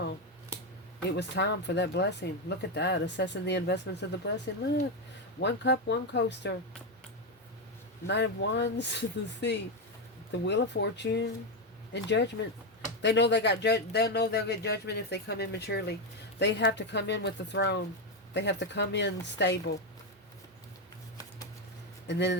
It was time for that blessing. Look at that. Assessing the investments of the blessing. Look. 1 cup, 1 coaster. Knight of Wands, the Sea. The Wheel of Fortune and Judgment. They know they got they'll know they'll get judgment if they come in maturely. They have to come in with the throne. They have to come in stable. And then in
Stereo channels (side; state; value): both; normal; correlation 0.08